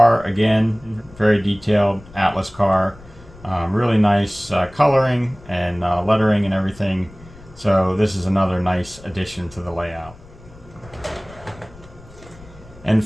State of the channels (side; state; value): left; noise; rumble, 21 dB below the sound